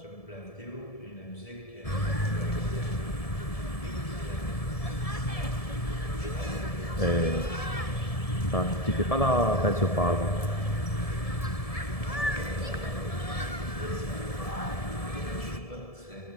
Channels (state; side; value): late; right; 1.7 ms